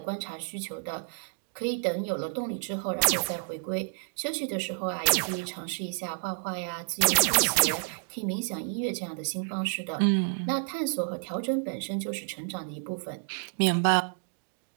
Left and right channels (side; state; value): left; silent; digital silence